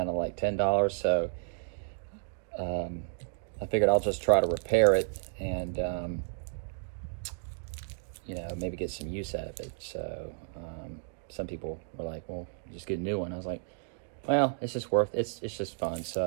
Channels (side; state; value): left; silent; digital silence